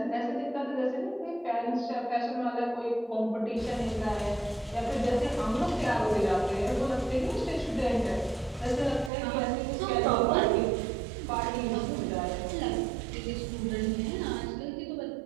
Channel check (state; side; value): drops out; left; at 9.1 s